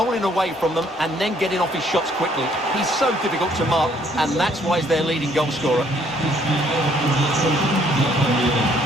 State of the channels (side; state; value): both; normal; correlation 0.65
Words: away from them, and then getting off his shots quickly. He's so difficult to mark, and that's why he's their leading goal scorer.